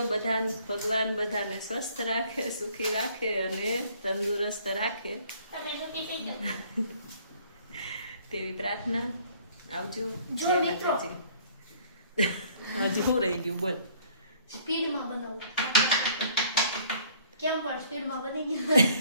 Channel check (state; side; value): inverted; both; correlation -0.58